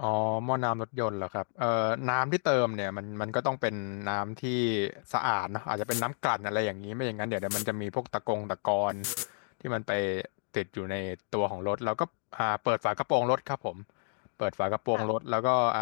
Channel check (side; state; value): right; silent; digital silence